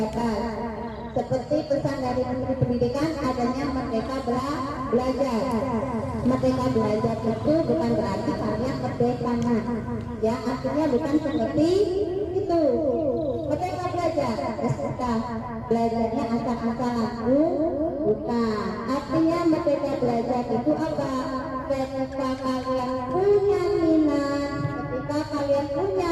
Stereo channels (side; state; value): both; identical; correlation 1.00